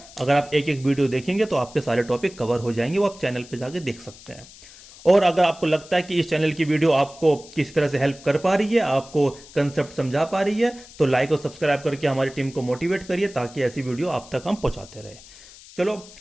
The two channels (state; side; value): noise; left; hiss, 20 dB below the sound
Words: अगर आप एक एक वीडियो देखेंगे तो आपके सारे टॉपिक कवर हो जाएंगे, वो आप चैनल पे जाके देख सकते हैं। और अगर आपको लगता है कि इस चैनल की वीडियो आपको किसी तरह से हेल्प कर पा रही है, आपको कंसेप्ट समझा पा रही है, तो लाइक और सब्सक्राइब करके हमारी टीम को मोटिवेट करिए ताकि ऐसी वीडियो आप तक हम पहुंचाते रहे। चलो